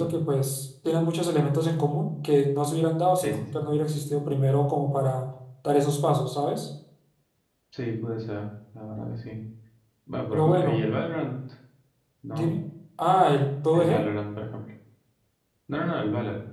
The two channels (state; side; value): identical; both; correlation 1.00